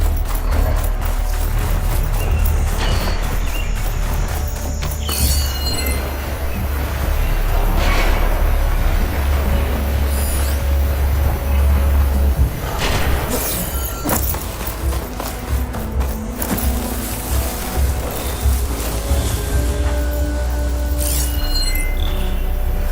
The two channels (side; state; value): both; identical; correlation 1.00